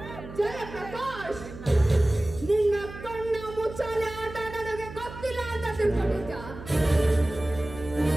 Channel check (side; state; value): right; noise; hum, 13 dB below the sound